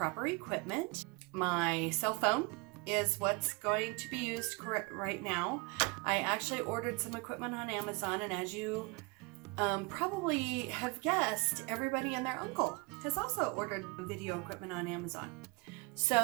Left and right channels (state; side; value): quieter; left; 28.6 dB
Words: equipment. My cell phone is what's going to be used right now. I actually ordered some equipment on Amazon, and as you probably have guessed, everybody and their uncle has also ordered video equipment on Amazon.